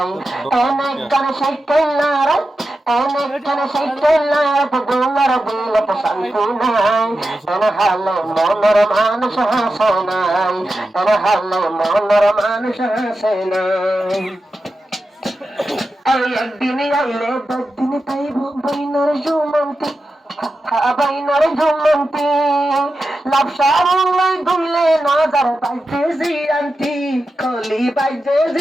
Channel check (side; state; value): both; normal; correlation 0.91